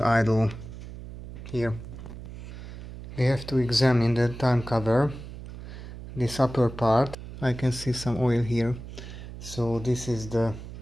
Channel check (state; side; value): noise; right; hum, 12 dB below the sound